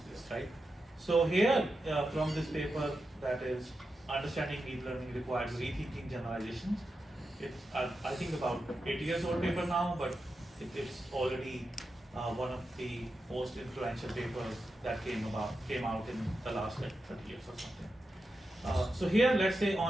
this, right? So here from this paper that is Understanding Deep Learning Requires Rethinking Generalizations. It's I think about 8 years old paper now, but it is already one of the most influential papers that came out in the last like 30 years or something. So here, let's say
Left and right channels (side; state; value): both; normal; correlation 0.89